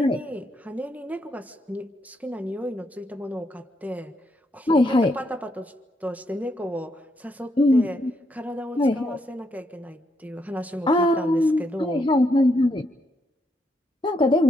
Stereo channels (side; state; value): both; normal; correlation 0.77